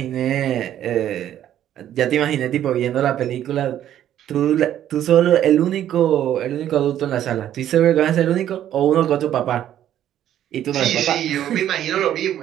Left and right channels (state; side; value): quieter; left; 11.3 dB